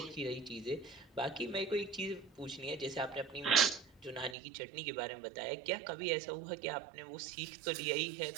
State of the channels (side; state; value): left; drops out; at 4.4 s